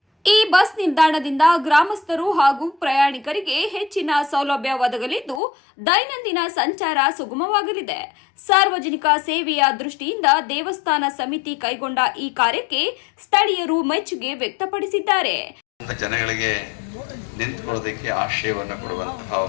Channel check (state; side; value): drops out; right; at 5.4 s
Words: ಈ ಬಸ್ ನಿಲ್ದಾಣದಿಂದ ಗ್ರಾಮಸ್ಥರು ಹಾಗೂ ಪ್ರಯಾಣಿಕರಿಗೆ ಹೆಚ್ಚಿನ ಸೌಲಭ್ಯ ಒದಗಲಿದ್ದು ದೈನಂದಿನ ಸಂಚಾರ ಸುಗಮವಾಗಲಿದೆ. ಸಾರ್ವಜನಿಕ ಸೇವೆಯ ದೃಷ್ಟಿಯಿಂದ ದೇವಸ್ಥಾನ ಸಮಿತಿ ಕೈಗೊಂಡ ಈ ಕಾರ್ಯಕ್ಕೆ ಸ್ಥಳೀಯರು ಮೆಚ್ಚುಗೆ ವ್ಯಕ್ತಪಡಿಸಿದ್ದಾರೆ. ಜನಗಳಿಗೆ ನಿಂತುಕೊಳ್ಳೋದಕ್ಕೆ ಆಶ್ರಯವನ್ನು ಕೊಡುವಂತಹ